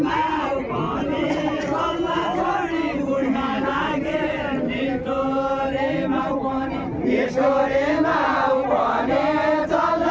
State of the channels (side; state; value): both; identical; correlation 1.00